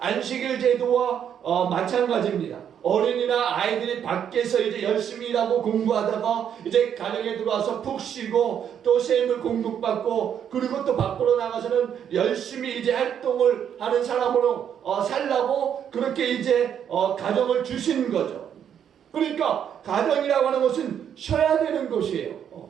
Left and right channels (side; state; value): left; quieter; 8.8 dB